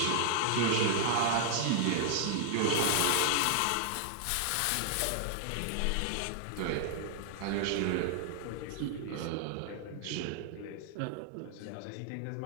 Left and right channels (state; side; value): different; both; correlation -0.01